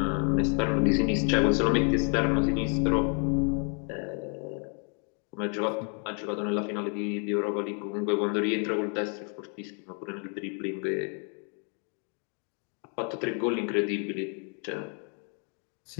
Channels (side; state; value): right; quieter; 39.9 dB